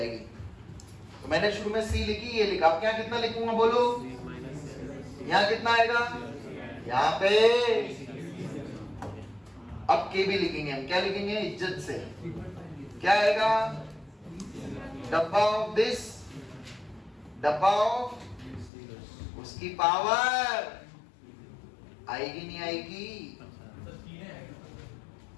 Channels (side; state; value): right; drops out; at 18.7 s